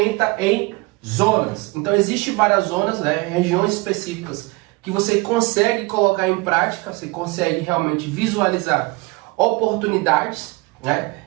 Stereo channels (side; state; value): left; quieter; 24.4 dB